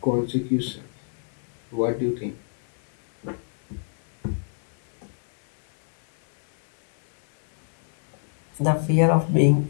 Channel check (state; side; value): silent; right; 61 dB below the other